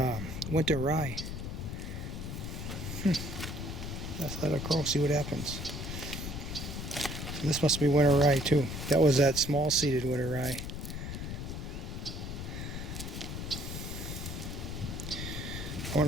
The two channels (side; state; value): left; noise; rumble, 6 dB below the sound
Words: winter rye. Let's let it grow, see what happens. So this must be winter rye too. That was that small seeded winter rye. I